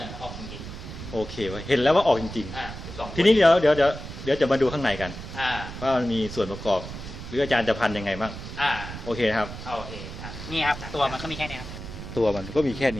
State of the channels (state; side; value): noise; right; rumble, 10 dB below the sound